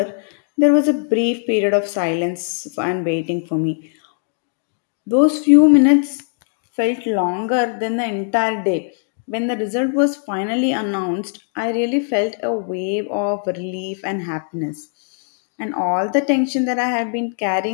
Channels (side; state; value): right; silent; 66 dB below the other